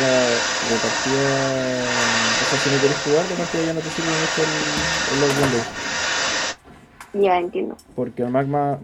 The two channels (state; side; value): identical; both; correlation 1.00